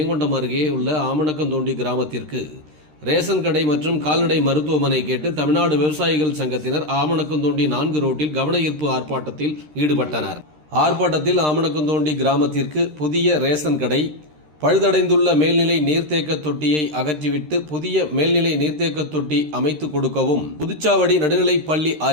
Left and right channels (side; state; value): left; late; 13 ms